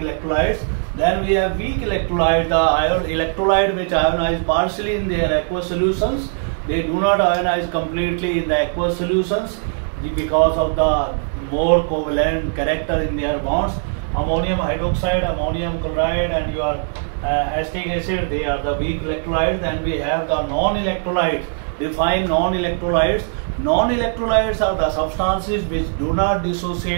Then we have weak electrolyte, the electrolyte which ionize partially in their aqueous solutions. They do not ionize completely in the aqueous solutions because of the more covalent character in their bonds. Ammonium hydroxide, ammonium chloride, and your acetic acid, they are the weak electrolytes. Then we have the non-electrolytes. Define non-electrolytes. Non-electrolytes are the substances which do not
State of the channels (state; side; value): silent; left; 66 dB below the other